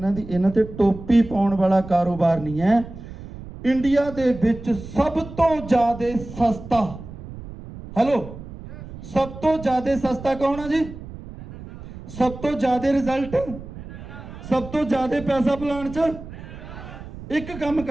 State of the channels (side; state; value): right; noise; rumble, 13 dB below the sound